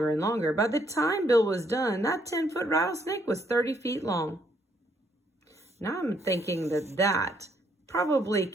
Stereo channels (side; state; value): both; normal; correlation 0.70